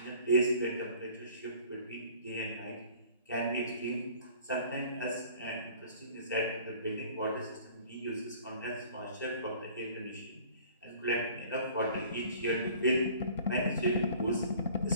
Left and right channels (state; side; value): inverted; both; correlation -0.50